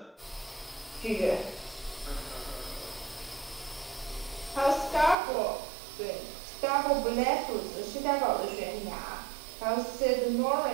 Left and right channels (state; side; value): drops out; left; at 5.2 s